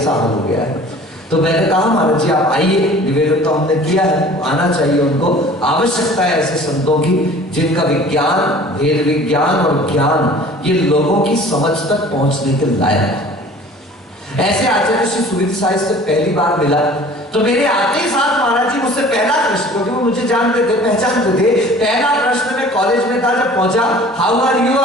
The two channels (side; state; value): both; normal; correlation 0.46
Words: हाल हो गया है। तो मैंने कहा महाराज जी आप आइए, निवेदन तो हमने किया है, आना चाहिए उनको, आवश्यकता है ऐसे संतों की जिनका विज्ञान, वेद विज्ञान और ज्ञान ये लोगों की समझ तक पहुंचने के लायक। ऐसे आचार्य श्री सुविधि साहिब से पहली बार मिला तो मेरे आते ही साथ महाराज जी मुझसे पहला प्रश्न, क्योंकि वो मुझे जानते थे, पहचानते थे, पहला प्रश्न मैं कॉलेज में था जब पहुंचा, हाउ आर यू